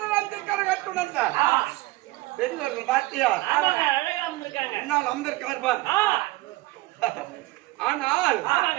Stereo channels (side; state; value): left; quieter; 19.4 dB